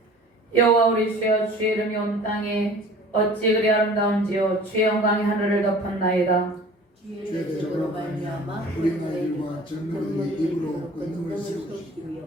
여호와 우리 주여, 주의 이름이 온 땅에 어찌 그리 아름다운지요. 주의 영광이 하늘을 덮었나이다. 주의 대적으로 말미암아 우리 나일과 전능의 입으로 권능을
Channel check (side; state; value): both; normal; correlation 0.45